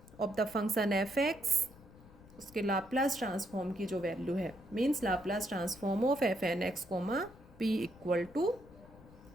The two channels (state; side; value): noise; left; rumble, 21 dB below the sound